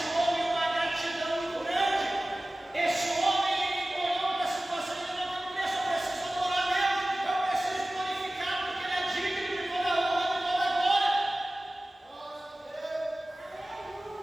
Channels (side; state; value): both; normal; correlation 0.97